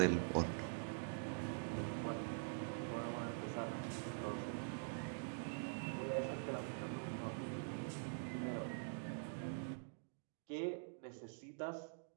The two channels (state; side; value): silent; left; digital silence